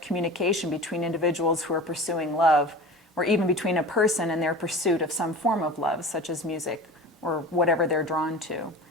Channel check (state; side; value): normal; both; correlation 0.35